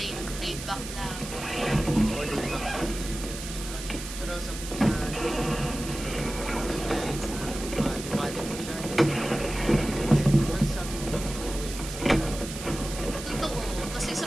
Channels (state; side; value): noise; right; hiss, 10 dB below the sound